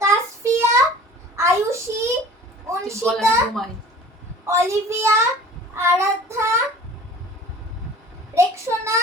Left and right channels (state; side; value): normal; both; correlation 0.45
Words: তাসফিয়া, আয়ুষী, অনশিতা, ঘুমাই, অলিভিয়া, আরাধ্যা, রেক্সোনা,